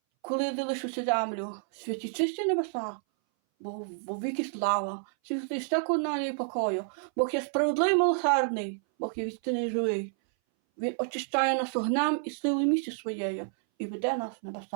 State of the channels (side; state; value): left; silent; 58 dB below the other